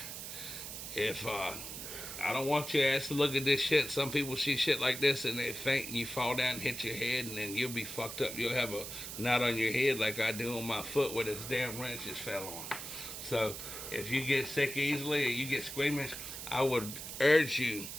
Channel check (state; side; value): noise; right; hiss, 8 dB below the sound